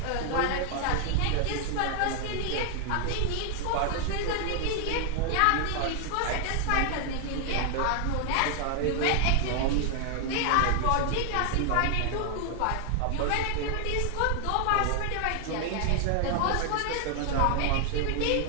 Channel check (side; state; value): both; different; correlation 0.00